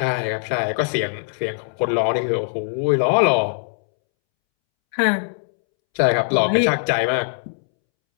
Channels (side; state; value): right; silent; 65 dB below the other